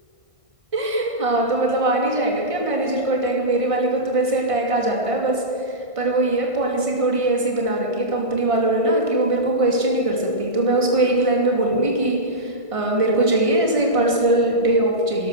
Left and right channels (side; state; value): left; late; 1.6 ms